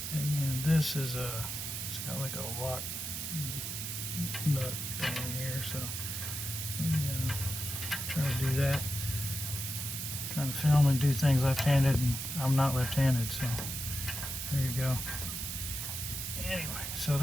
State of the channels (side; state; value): right; noise; hiss, 5 dB below the sound